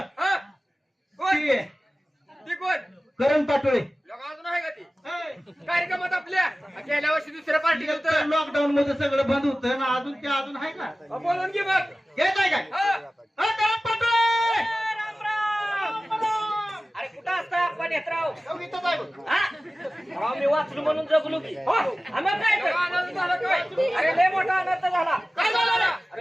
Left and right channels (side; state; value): both; normal; correlation 0.96